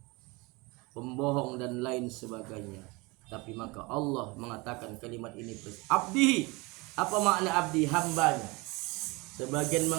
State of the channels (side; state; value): left; quieter; 25.4 dB